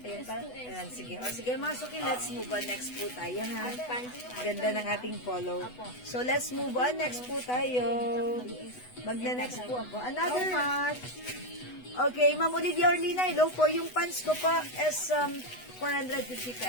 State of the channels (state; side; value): late; right; 8.1 ms